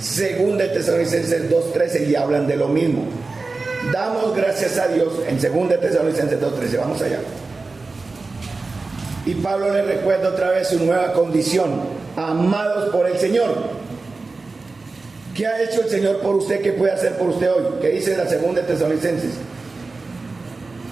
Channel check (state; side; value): quieter; left; 3.7 dB